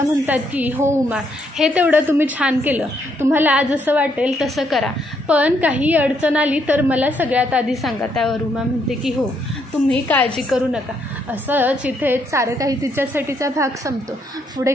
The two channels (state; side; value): normal; both; correlation 0.74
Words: म्हणतात की हो उमा, हे तेवढं तुम्ही छान केलं, तुम्हाला जसं वाटेल तसं करा, पण काही अडचण आली तर मला सगळ्यात आधी सांगा. त्यावर उमा म्हणते की हो, तुम्ही काळजी करू नका. असंच इथे सारं काही तिच्यासाठीचा भाग संपतो. पुढे